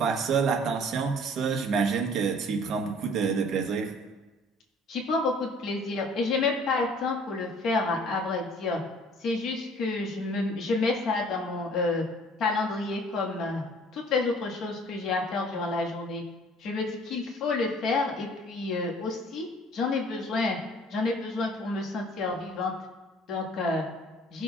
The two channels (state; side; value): normal; both; correlation 0.52